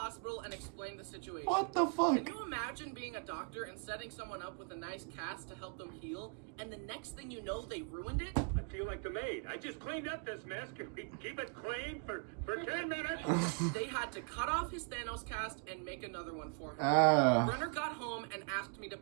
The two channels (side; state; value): left; quieter; 38.2 dB